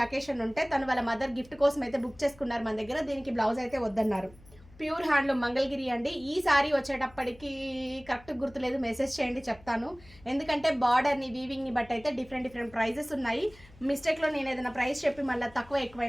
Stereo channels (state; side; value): noise; left; hum, 24 dB below the sound